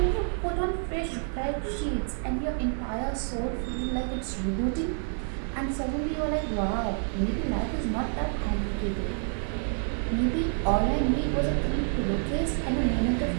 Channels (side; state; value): left; silent; 59 dB below the other